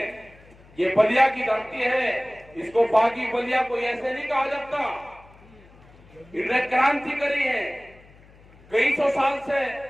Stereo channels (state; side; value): noise; left; hum, 25 dB below the sound